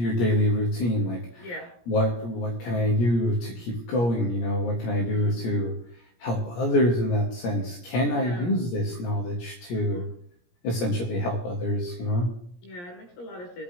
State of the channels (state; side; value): late; right; 17 ms